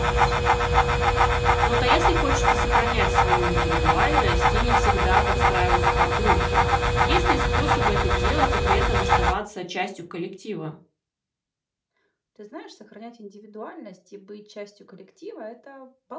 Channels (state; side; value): identical; both; correlation 1.00